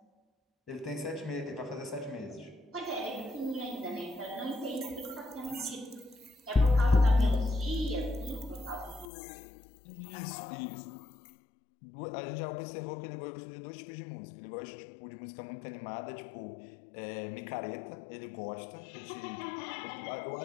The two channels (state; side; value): drops out; right; at 9.1 s